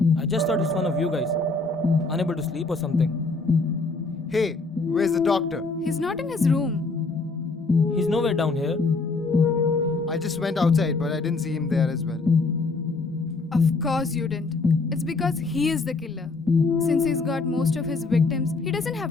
I just thought it's one of you guys. Unable to sleep or something. Hey, where's the doctor? He's not in his room. He's nowhere down here. I just went outside, but I didn't see him there as well. Of course you didn't. It's because he is the killer. Since he's got most of his victims, he doesn't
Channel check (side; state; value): right; quieter; 3.7 dB